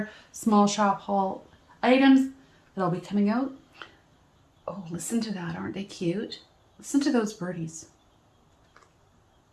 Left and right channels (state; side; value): identical; both; correlation 1.00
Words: small shop haul items that'll be coming out. Oh, listen to that. Aren't they cute? Listen to those birdies.